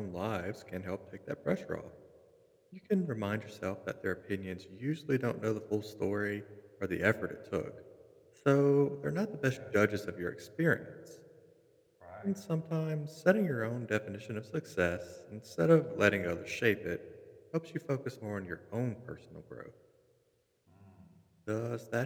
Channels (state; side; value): identical; both; correlation 1.00